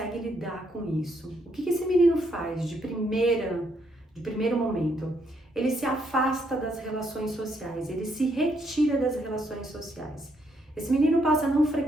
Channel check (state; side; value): normal; both; correlation 0.74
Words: lidar com isso. O que esse menino faz de primeiro momento? Ele se afasta das relações sociais, ele se retira das relações sociais. Esse menino passa a não